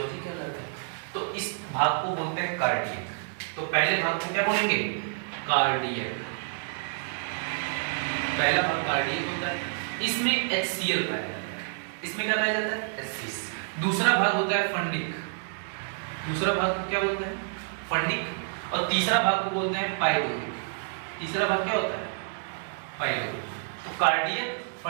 कहलाता है, तो इस भाग को बोलते हैं कार्डियक। तो पहले भाग को क्या बोलेंगे, कार्डियक। पहला भाग कार्डियक होता है, इसमें HCl पाया जाता है। इसमें क्या पाया जाता है, HCl। दूसरा भाग होता है फंडिक, दूसरा भाग को क्या बोलते हैं, फंडिक। और तीसरा भाग को बोलते हैं पाइलोरिक। तीसरा भाग क्या होता है, पाइलोरिक। तो कार्डियक,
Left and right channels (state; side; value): silent; left; 57 dB below the other